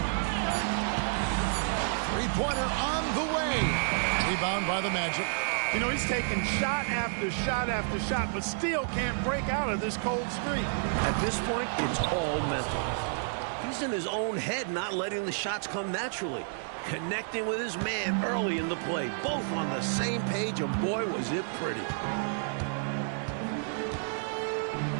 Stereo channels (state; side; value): silent; left; 57 dB below the other